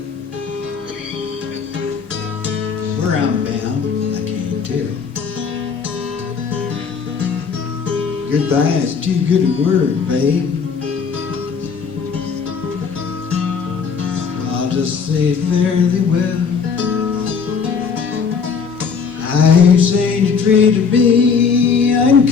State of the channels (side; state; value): right; quieter; 5.9 dB